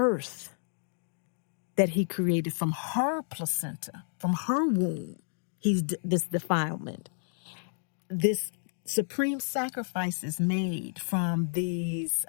that he created from her placenta, from her womb. This defilement. This supreme sacrifice is made from these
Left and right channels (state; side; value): silent; right; digital silence